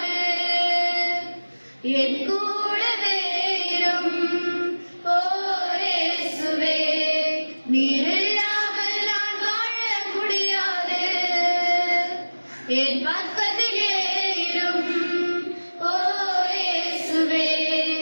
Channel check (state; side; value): inverted; both; correlation -1.00